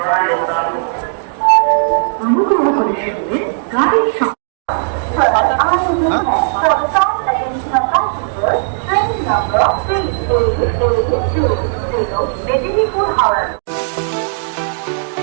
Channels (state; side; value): silent; left; digital silence